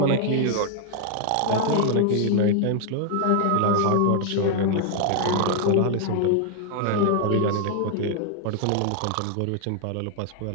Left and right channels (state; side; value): different; both; correlation 0.00